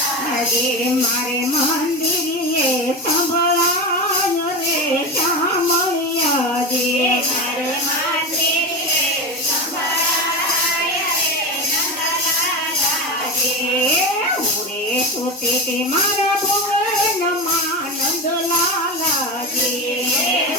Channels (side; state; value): both; normal; correlation 0.21